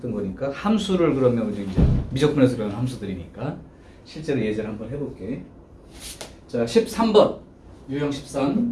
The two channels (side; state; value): both; identical; correlation 1.00